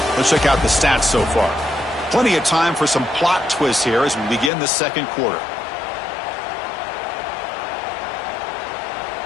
Let's check out the stats so far. Plenty of time for some plot twists here as we begin the second quarter.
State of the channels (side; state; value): right; drops out; at 4.5 s